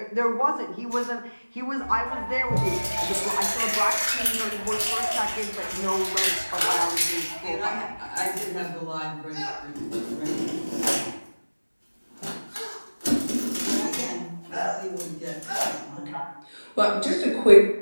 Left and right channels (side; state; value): both; inverted; correlation -1.00